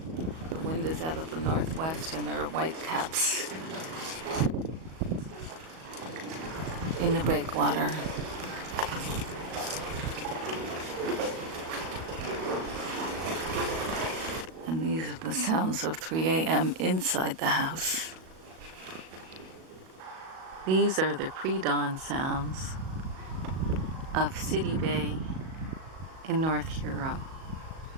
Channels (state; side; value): late; left; 37 ms